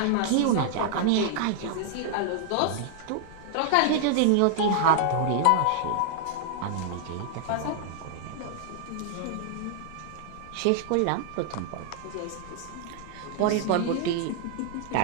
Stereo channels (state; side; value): different; both; correlation -0.01